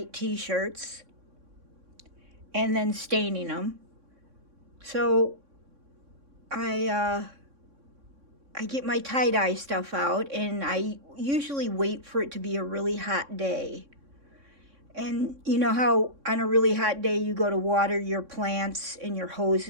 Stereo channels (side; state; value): left; late; 3.6 ms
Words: t-shirts and then staining them. So I get my tie-dye stuff out, and I usually wait for it to be a really hot day. And you know how on a really hot day you go to water your plants and your hose